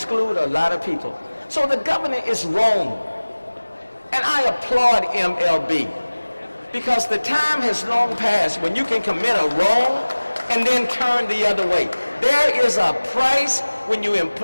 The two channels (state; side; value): inverted; both; correlation -1.00